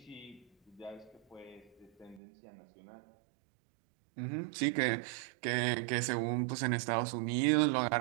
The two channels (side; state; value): left; drops out; at 2.2 s